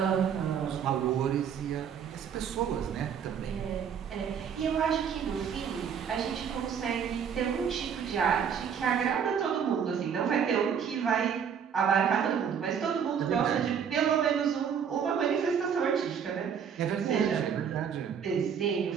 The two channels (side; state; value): left; quieter; 7.6 dB